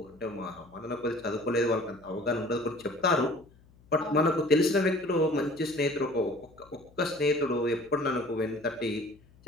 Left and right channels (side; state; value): left; noise; hum, 27 dB below the sound